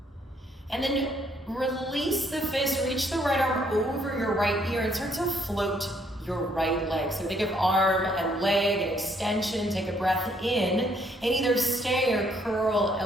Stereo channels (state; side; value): normal; both; correlation 0.68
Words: And then release the fist. Reach the right arm over your right ear and start to float your right leg. So think of arm and leg and extension. Take a breath in and either stay or curl